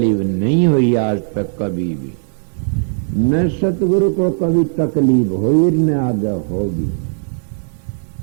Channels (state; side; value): silent; left; 68 dB below the other